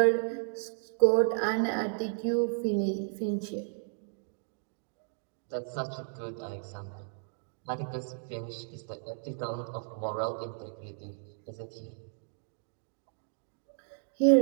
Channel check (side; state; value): left; silent; 56 dB below the other